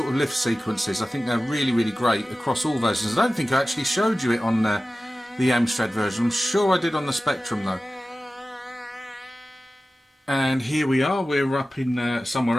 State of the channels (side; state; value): both; normal; correlation 0.96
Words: of lift sequences. I think they're really, really great across all versions. I don't think I actually showed you it on the Amstrad version. I'm sure I did on the Spectrum, though. And here we are. We're up in